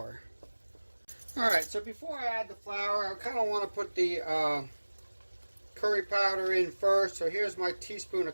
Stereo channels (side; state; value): both; inverted; correlation -1.00